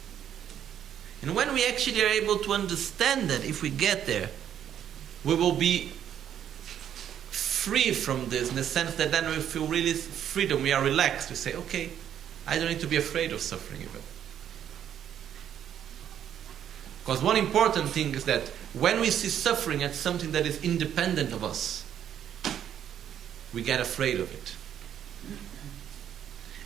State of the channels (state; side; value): quieter; left; 9.8 dB